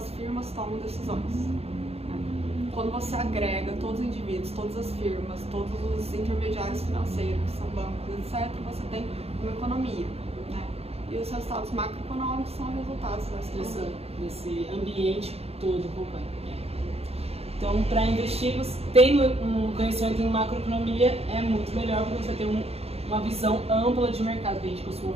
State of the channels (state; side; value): late; left; 0.29 ms